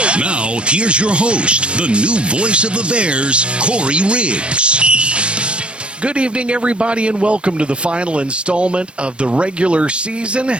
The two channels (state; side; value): late; left; 0.057 ms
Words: Now, here's your host, the new voice of the Bears, Corey Riggs. Good evening, everybody, and welcome to the final installment of the regular season